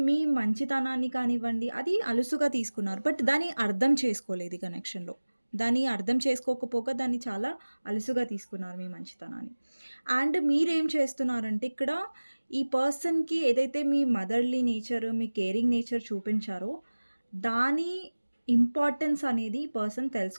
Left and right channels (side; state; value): both; inverted; correlation -1.00